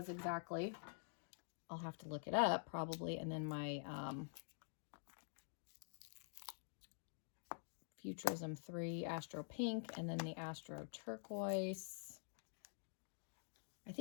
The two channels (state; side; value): silent; right; digital silence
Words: exactly. I'll have to look it up probably. And then my Futurism 3 Astro Pink, and then the Astro Turquoise. I